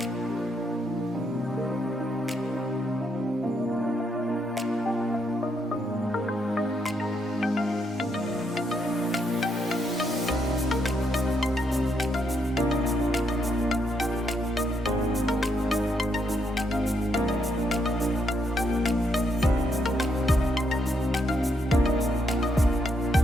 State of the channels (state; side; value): normal; both; correlation 0.77